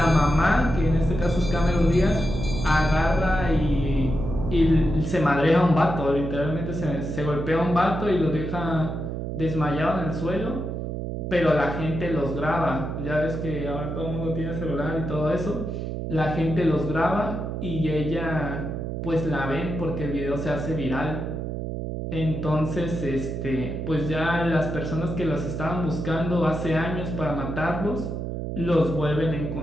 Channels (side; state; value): right; noise; hum, 4 dB below the sound